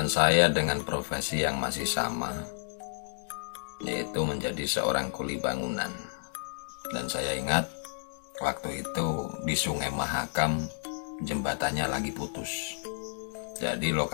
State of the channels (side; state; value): right; silent; digital silence